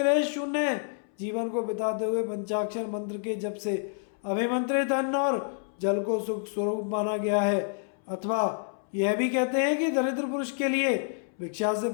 शून्य जीवन को बिताते हुए पंचाक्षर मंत्र के जप से अभिमंत्रित अन्न और जल को सुख स्वरूप माना गया है। अथवा यह भी कहते हैं कि दरिद्र पुरुष के लिए भिक्षा से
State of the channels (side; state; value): right; silent; 59 dB below the other